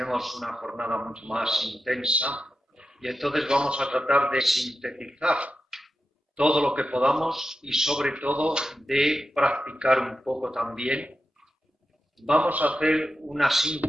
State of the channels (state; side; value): normal; both; correlation 0.90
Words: una jornada mucho más intensa y entonces vamos a tratar de sintetizar todo lo que podamos y sobre todo de practicar un poco también. Vamos a hacer una